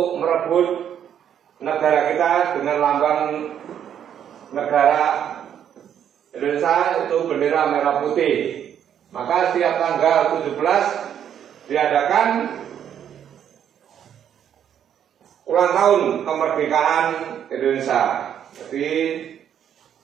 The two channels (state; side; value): quieter; left; 9.3 dB